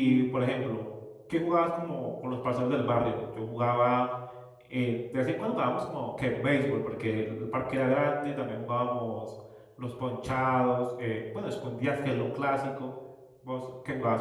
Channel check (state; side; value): identical; both; correlation 1.00